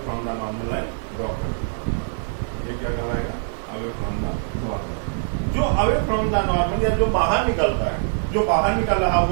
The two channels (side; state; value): left; silent; digital silence